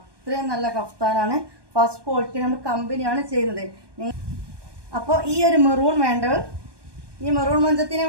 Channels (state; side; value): late; left; 1.2 ms